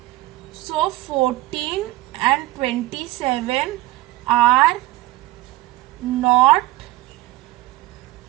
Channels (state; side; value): quieter; left; 18.4 dB